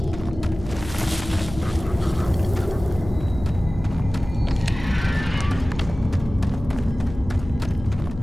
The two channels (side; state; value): left; noise; hum, 12 dB below the sound